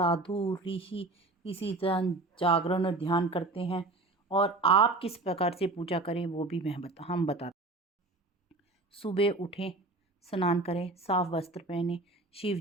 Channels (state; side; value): quieter; left; 3.0 dB